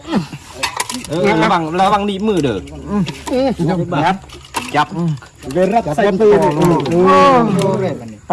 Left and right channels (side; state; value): both; identical; correlation 1.00